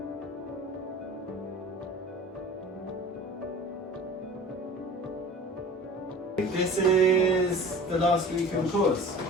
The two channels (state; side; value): normal; both; correlation 0.40